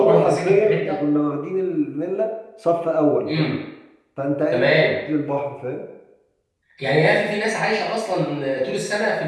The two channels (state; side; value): identical; both; correlation 1.00